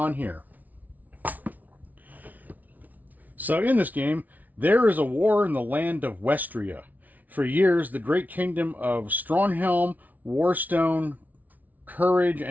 here. So in this game, there is a war in the land of Westria. For years, the great kingdom of Stronghelm, Warstone, Courage,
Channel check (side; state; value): left; late; 0.076 ms